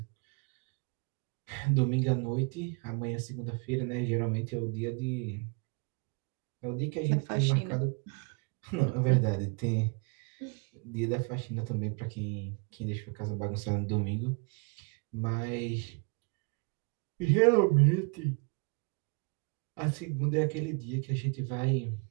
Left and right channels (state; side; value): quieter; left; 34.1 dB